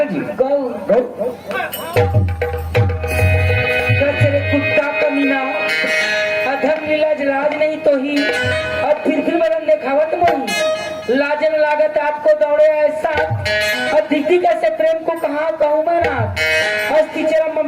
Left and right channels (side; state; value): both; identical; correlation 1.00